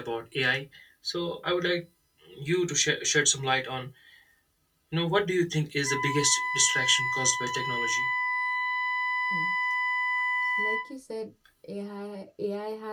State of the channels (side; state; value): both; identical; correlation 1.00